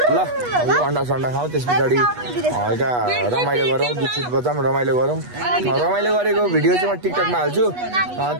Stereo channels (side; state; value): left; late; 8.2 ms